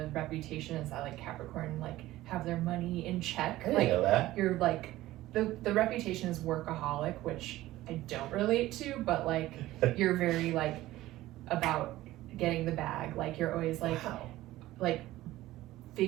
reputation is that like Capricorn like have their money in check. I didn't Like know that. you're like the reputation is workaholic, which I don't relate to, but like you're very like about getting the bag. Like you're always like Wow. like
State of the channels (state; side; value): quieter; left; 16.2 dB